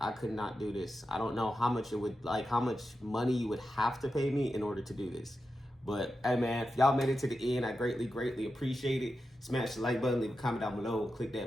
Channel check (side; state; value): both; normal; correlation 0.90